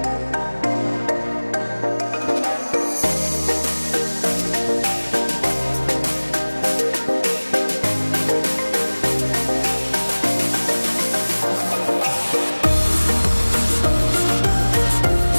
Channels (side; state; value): both; inverted; correlation -1.00